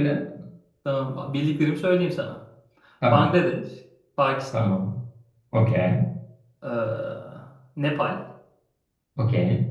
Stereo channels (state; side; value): identical; both; correlation 1.00